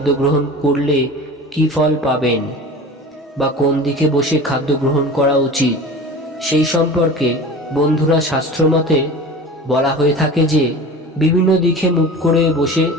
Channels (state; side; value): normal; both; correlation 0.36